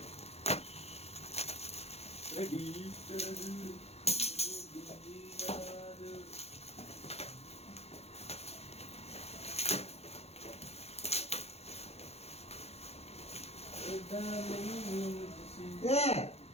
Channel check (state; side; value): late; right; 0.30 ms